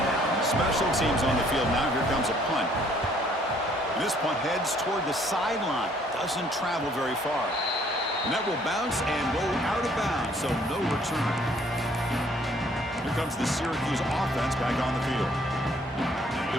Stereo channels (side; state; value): both; normal; correlation 0.62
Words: Special teams on the field now. Here comes a punt. And this punt heads toward the sideline. Doesn't travel very far. And that will bounce and roll out of bounds, so no return. Here comes the Syracuse offense back on the field. They